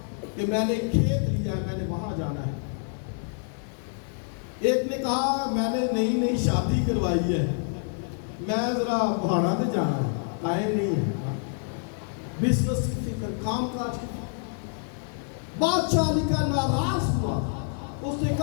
کہ میں نے کھیت لیا ہے، میں نے وہاں جانا ہے۔ ایک نے کہا میں نے نئی شادی کروائی ہے، میں ذرا پہاڑا پہ جانا ہے، ٹائم نہیں ہے۔ بزنس کی فکر، کام کاج کی فکر۔ بادشاہ علی کا ناراض ہوا، اس نے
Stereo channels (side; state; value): right; silent; 59 dB below the other